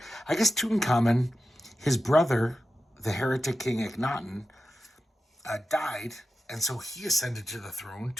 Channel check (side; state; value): both; normal; correlation 0.91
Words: I guess Tutankhamun, his brother, the heretic king Akhenaten, died. And so he ascended to the throne,